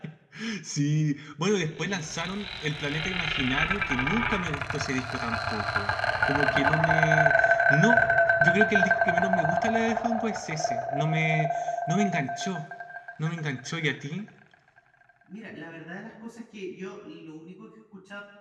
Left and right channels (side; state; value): both; identical; correlation 1.00